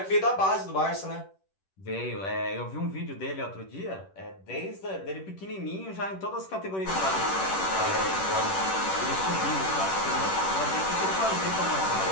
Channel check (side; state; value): right; late; 10 ms